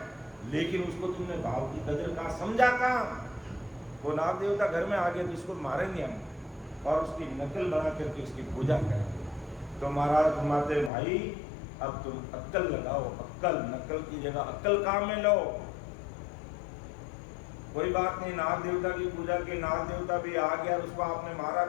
लेकिन उसको तुमने भाव की कदर का समझा कहाँ। वो नाग देवता घर में आ गए तो इसको मारेंगे हम, और उसकी नकल बना करके उसकी पूजा करेंगे। तो महाराज फरमाते भाई अब तुम अक्ल लगाओ, अक्ल, नकल की जगह अक्ल काम में लो। कोई बात नहीं, नाग देवता की पूजा के, नाग देवता भी आ गया, उसको आपने मारा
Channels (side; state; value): right; drops out; at 10.9 s